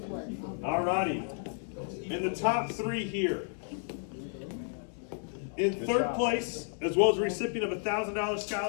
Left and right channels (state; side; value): silent; right; 56 dB below the other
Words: All righty. In the top 3 here. In 3rd place, as well as a recipient of a $1,000